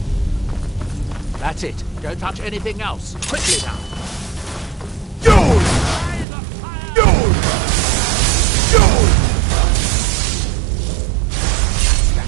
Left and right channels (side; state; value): left; drops out; at 6.2 s